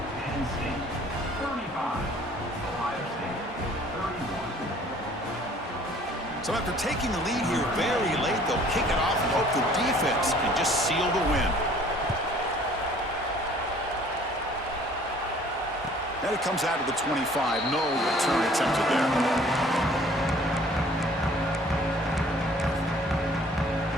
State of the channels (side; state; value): both; normal; correlation 0.54